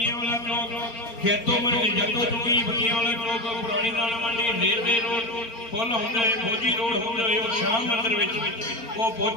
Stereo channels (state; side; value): late; right; 4.4 ms